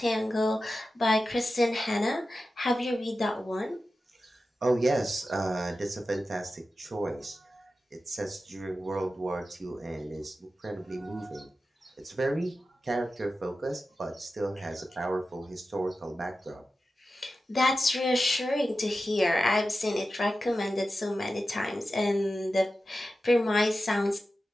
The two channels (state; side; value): normal; both; correlation 0.93